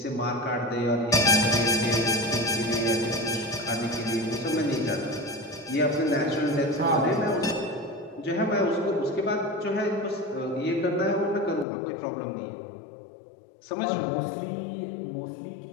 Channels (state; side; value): drops out; right; at 11.7 s